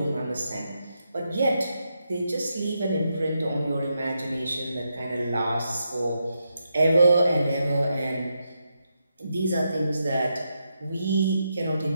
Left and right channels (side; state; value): both; inverted; correlation -0.84